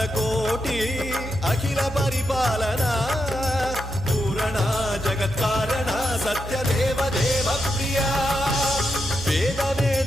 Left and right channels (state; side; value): normal; both; correlation 0.84